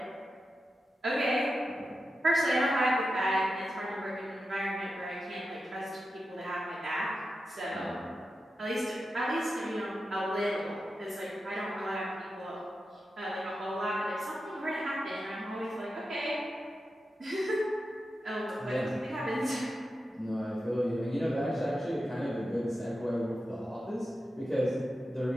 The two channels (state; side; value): normal; both; correlation 0.90